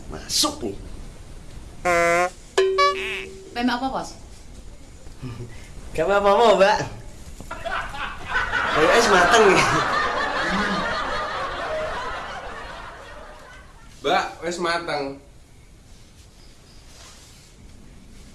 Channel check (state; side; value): identical; both; correlation 1.00